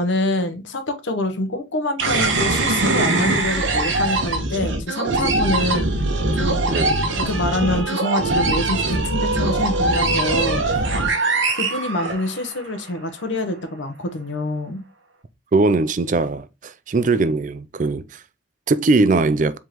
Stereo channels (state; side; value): normal; both; correlation 0.24